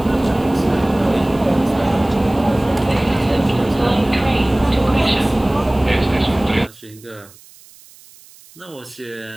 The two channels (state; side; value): noise; right; hiss, 24 dB below the sound